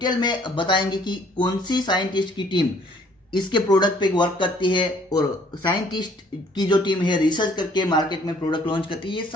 में बताएंगे कि कौन सी साइंटिस्ट की टीम इसके प्रोडक्ट पे वर्क करती है और साइंटिस्ट की जो टीम है रिसर्च करके मार्केट में प्रोडक्ट लॉन्च करती है। ये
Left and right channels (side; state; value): both; normal; correlation 0.59